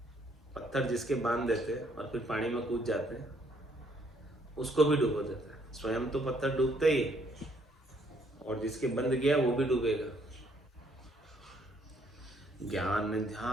पत्थर जिसके बांध देते हैं और फिर पानी में कूद जाते हैं, उसको भी डुबो देता है। स्वयं तो पत्थर डूबता ही है, और जिसके बंध गया वो भी डूबेगा। ज्ञान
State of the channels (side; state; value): both; normal; correlation 0.67